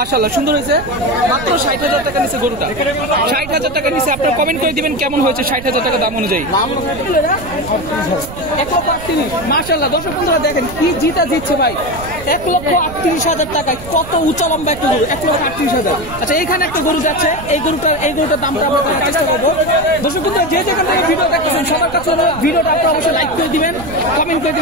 সুন্দর হয়েছে। মাত্র 60,000 টাকা নিচে গরুটা। 60,000 টাকা নিচে। আপনারা কমেন্ট করে দিবেন কেমন হয়েছে 60,000 টাকা দাম অনুযায়ী। 1,38,000। মাশাআল্লাহ, দর্শক বন্ধুরা দেখেন কি জিতা জিতছে ভাই। 1,38,000 টাকায় কত উঁচা লম্বা একটা গরু। 1,38,000। আচ্ছা, এখানে একটা গরু যাচ্ছে। এই গরুটার দামটা আমরা জানার চেষ্টা করবো। দর্শক বন্ধুরা যে যেখান থেকে ভিডিও দেখতেছেন সবার কাছে ভিডিওটা আপনারা অবশ্যই লাইক করে দিবেন, কমেন্ট করে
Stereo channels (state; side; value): noise; right; rumble, 13 dB below the sound